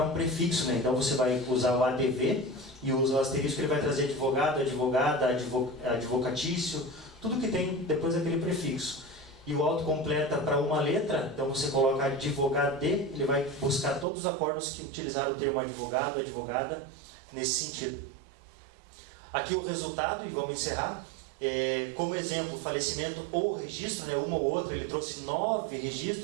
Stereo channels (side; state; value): left; drops out; at 14.1 s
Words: um prefixo, né? Então você vai usar o ADV e usa o asterisco, ele vai trazer advogado, advogada, advocatício, tudo que tem depois daquele prefixo. E o autocompleta para uma letra, então você coloca advogado, ele vai buscar todos os acórdãos que utilizaram o termo advogado, advogada, nesse sentido. Aqui o resultado, e vamos encerrar. Como exemplo, falecimento ou registro, né, uma ou outra, ele trouxe 9